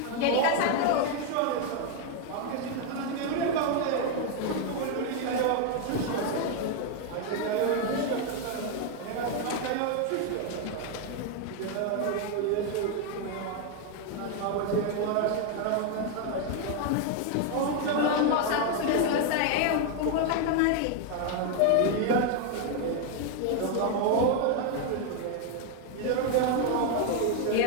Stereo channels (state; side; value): different; both; correlation 0.01